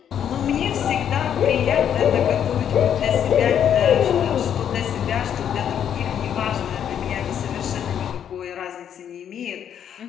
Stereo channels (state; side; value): quieter; right; 9.1 dB